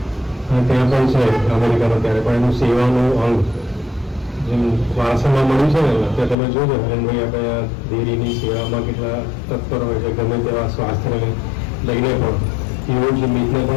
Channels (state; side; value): drops out; right; at 6.4 s